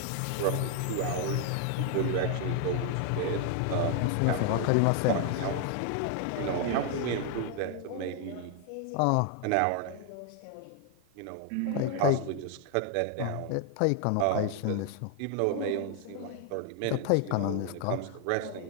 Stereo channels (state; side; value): different; both; correlation 0.00